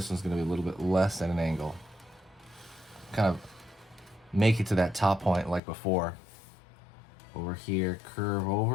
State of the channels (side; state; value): right; drops out; at 5.6 s